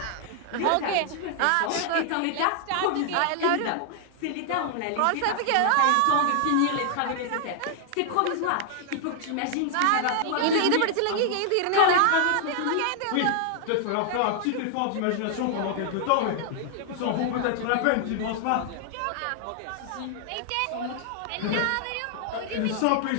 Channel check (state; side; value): different; both; correlation 0.00